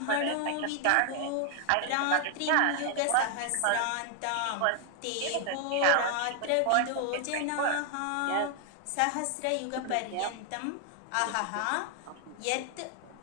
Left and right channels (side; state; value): both; different; correlation 0.00